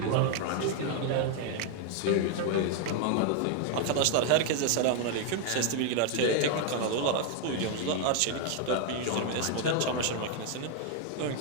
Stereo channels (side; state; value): both; different; correlation 0.00